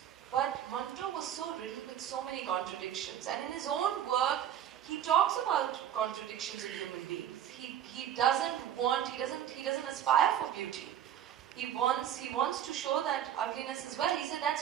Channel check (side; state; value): left; quieter; 10.4 dB